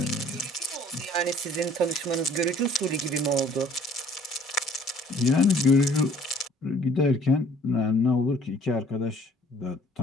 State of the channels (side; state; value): both; normal; correlation 0.56